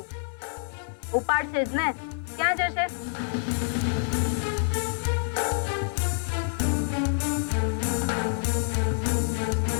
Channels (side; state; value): right; silent; 60 dB below the other